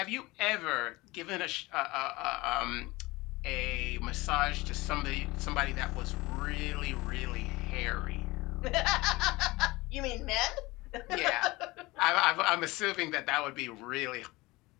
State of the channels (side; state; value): right; quieter; 21.4 dB